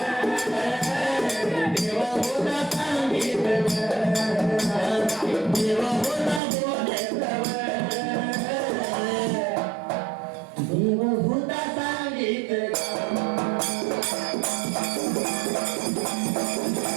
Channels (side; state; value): left; drops out; at 6.4 s